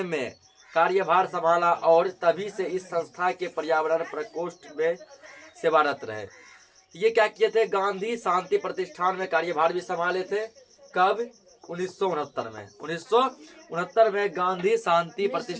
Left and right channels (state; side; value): identical; both; correlation 1.00